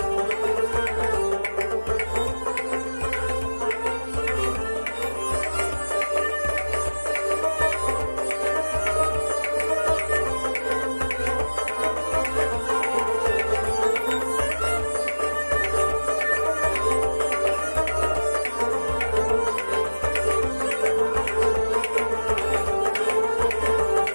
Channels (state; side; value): inverted; both; correlation -1.00